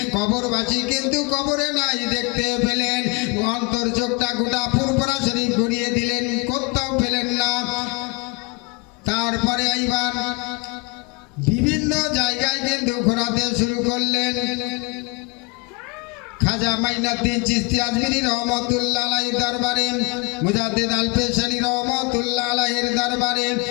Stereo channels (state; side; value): quieter; right; 29.0 dB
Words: কবরবাসী কিন্তু কবরে নাই দেখতে পেলেন। অন্তর চোখটা গোটা ফুরফুরা শরীফ ঘুরিয়ে দিলেন, কোথাও পেলেন না। তারপরে এইবার বিভিন্ন জায়গায় কিন্তু ঘোরাতে শুরু করলেন। খাজা মাইনুদ্দিন চিশতি আজমিরি রহমতুল্লাহ আলাইহির দরবারে, মুজাদ্দিদ আল পেশানি রহমতুল্লাহ আলাইহির দরবারে,